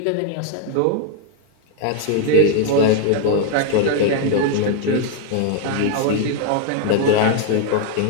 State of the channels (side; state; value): both; different; correlation 0.01